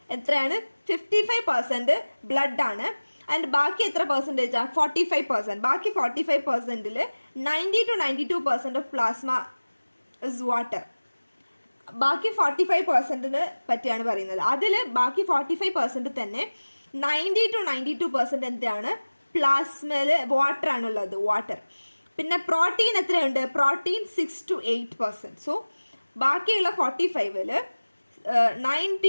എത്രയാണ്? 55% ബ്ലഡ് ആണ്. ആൻഡ് ബാക്കി എത്ര പെർസെൻറ്റേജ് ആണ്? 45%. ബാക്കി 45%ൽ 90 to 92% of plasma is water. ബാക്കി 45%ന് പറ്റിയാണ് പറയുന്നത്. അതിൽ ബാക്കി 45% തന്നെ 90 to 92% എന്താണ്? പ്ലാസ്മയിൽ വാട്ടർ ആണുള്ളത്, വാട്ടർ. പിന്നെ പ്രോട്ടീൻ എത്രയുണ്ട്? Protein 6 to 8%. സോ ബാക്കിയുള്ള 45ൽ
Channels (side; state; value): both; inverted; correlation -1.00